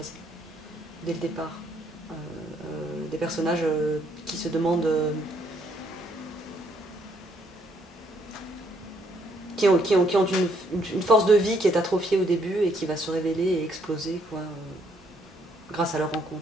dès le départ. Des personnages qui se demandent... qui ont une force de vie qui est atrophiée au début et qui va se révéler et exploser, quoi, grâce à leur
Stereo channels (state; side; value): normal; both; correlation 0.70